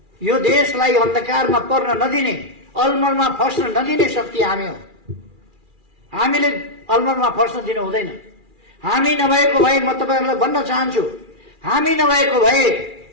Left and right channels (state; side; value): late; left; 2.4 ms